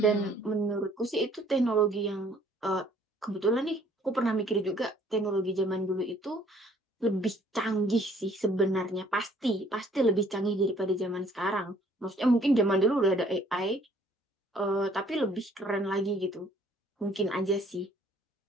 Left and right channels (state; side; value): normal; both; correlation 0.59